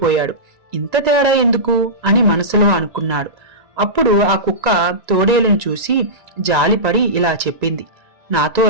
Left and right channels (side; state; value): left; late; 1.9 ms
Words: ఇంత తేడా ఎందుకు అని మనసులో అనుకున్నాడు. అప్పుడు ఆ కుక్క తోడేలును చూసి జాలిపడి ఇలా చెప్పింది, నాతో